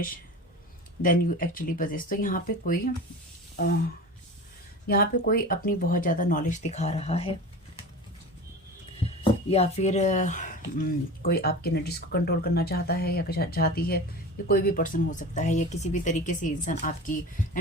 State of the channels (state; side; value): normal; both; correlation 0.32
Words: than you actually possess. तो यहाँ पे कोई अपनी बहुत ज़्यादा नॉलेज दिखा रहा है या फिर कोई आपके एनर्जीज को कंट्रोल करना चाहता है या चाहती है। ये कोई भी पर्सन हो सकता है या किसी भी तरीके से इंसान आपकी